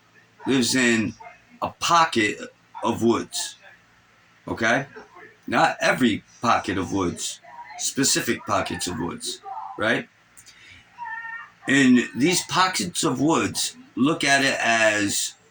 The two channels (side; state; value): both; identical; correlation 1.00